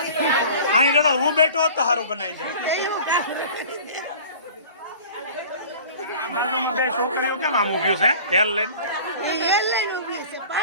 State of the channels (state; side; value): inverted; both; correlation -0.43